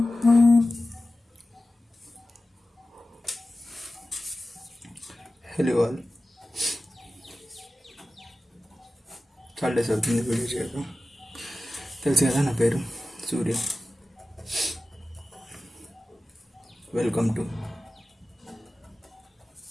Hello all. చాలా days అవుతుంది video చేయక. తెలుసు కదా నా పేరు Surya. Welcome to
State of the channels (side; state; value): both; normal; correlation 0.95